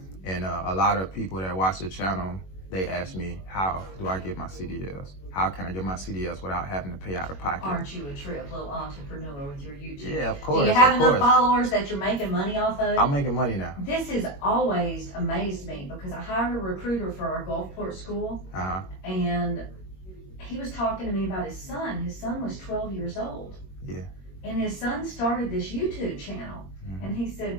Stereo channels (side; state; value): right; late; 21 ms